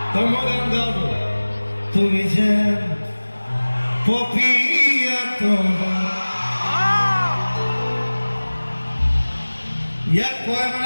তোমাৰ গান গাও তুমি যে পপিয়া তোমাৰ ইয়াক কয়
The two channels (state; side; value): inverted; both; correlation -1.00